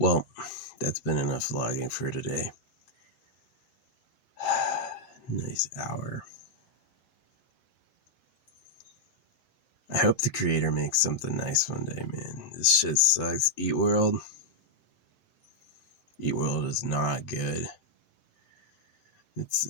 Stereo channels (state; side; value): late; right; 7.8 ms